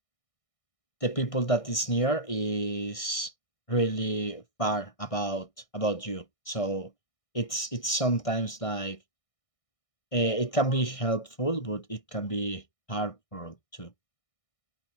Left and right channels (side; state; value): right; late; 1.6 ms